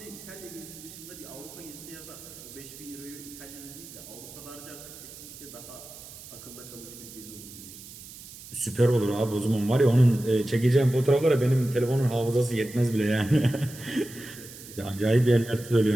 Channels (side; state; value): right; noise; hiss, 16 dB below the sound